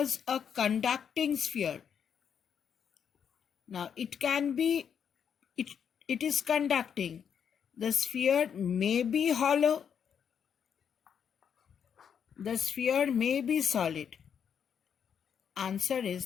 a conducting sphere. Now it can be, it is conducting. The sphere may be hollow the sphere may be solid. Answer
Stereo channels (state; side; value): quieter; right; 7.8 dB